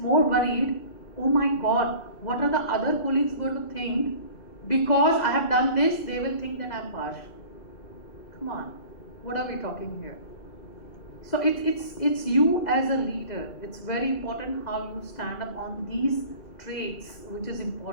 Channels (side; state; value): right; late; 2.0 ms